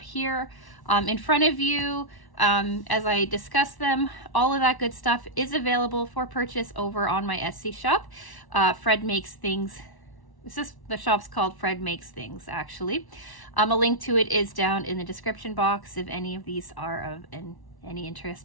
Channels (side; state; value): right; late; 1.1 ms